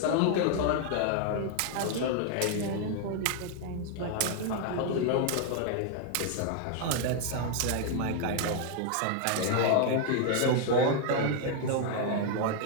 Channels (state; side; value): different; both; correlation 0.00